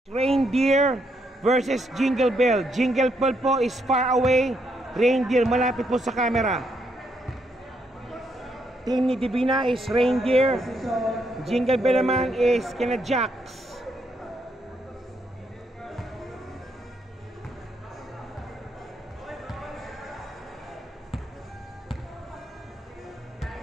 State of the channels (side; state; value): both; normal; correlation 0.76